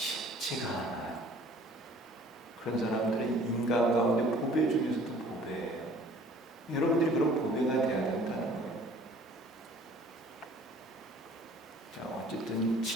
않아요. 그런 사람들은 인간 가운데 보배 중에서도 보배예요. 여러분들이 그런 보배가 돼야 된다는 거예요. 자, 어쨌든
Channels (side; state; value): both; normal; correlation 0.53